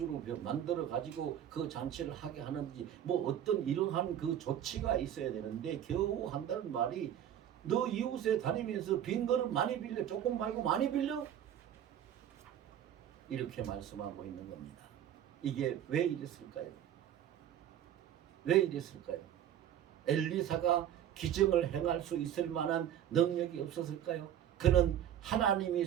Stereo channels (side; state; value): left; quieter; 10.4 dB